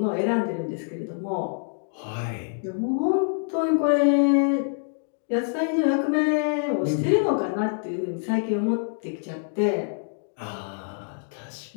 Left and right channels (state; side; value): silent; right; digital silence